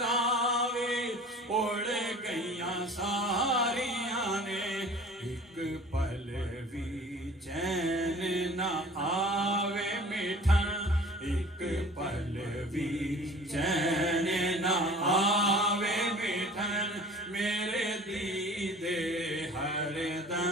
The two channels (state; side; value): normal; both; correlation 0.45